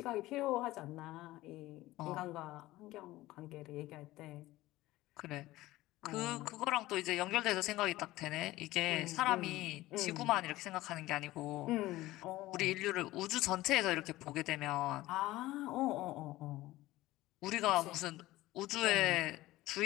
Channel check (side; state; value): right; quieter; 17.4 dB